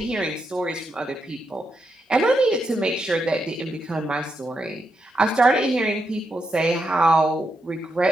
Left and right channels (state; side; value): normal; both; correlation 0.83